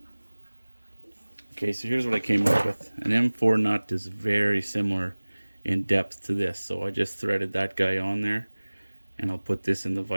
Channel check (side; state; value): both; inverted; correlation -1.00